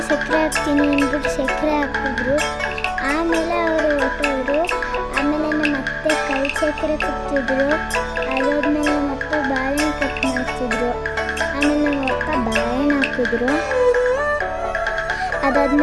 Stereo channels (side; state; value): both; identical; correlation 1.00